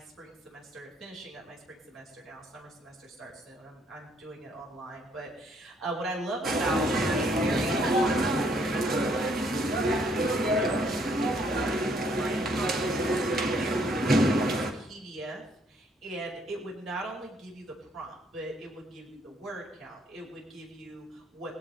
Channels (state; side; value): normal; both; correlation 0.67